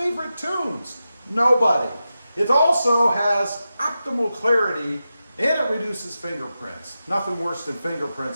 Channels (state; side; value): inverted; both; correlation -0.91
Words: tunes? Nobody. It also has optimal clarity and it reduces fingerprints. Nothing worse than